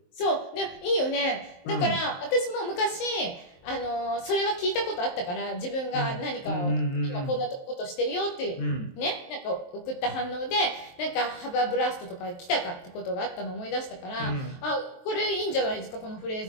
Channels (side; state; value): right; late; 23 ms